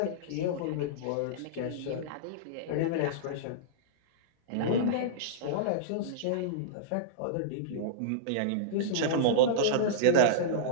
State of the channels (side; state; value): both; different; correlation -0.03